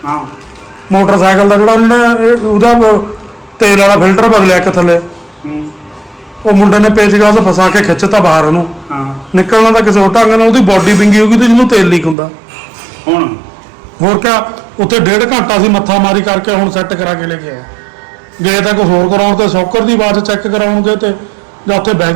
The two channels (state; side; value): drops out; left; at 12.2 s